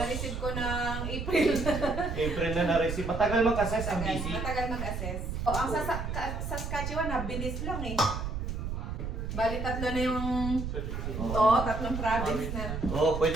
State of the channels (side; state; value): right; noise; rumble, 4 dB below the sound